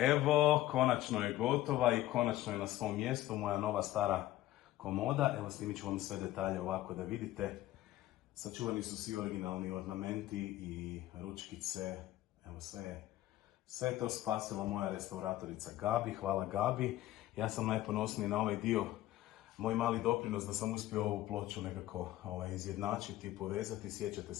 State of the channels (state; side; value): quieter; right; 15.2 dB